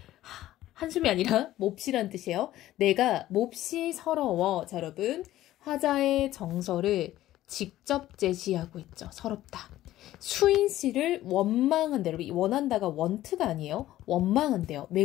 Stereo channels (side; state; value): right; quieter; 14.5 dB